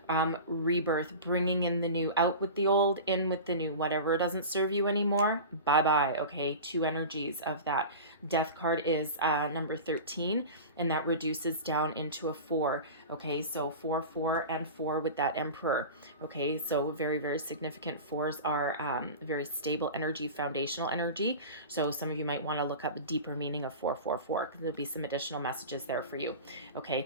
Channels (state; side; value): inverted; both; correlation -0.31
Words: rebirth, bringing in the new, out with the old, in with the new. Whatever doesn't serve you anymore, bye bye. Okay, two energies of that. Death card is number 13, and that reduces down into a 4. Okay, so 4, 4, and 4 with that Emperor. Okay, so very, very significant. 4s are very stable energy, foundational energy. So some of you might want to look up the deeper meaning of 444, because there'll be some additional messages there for you.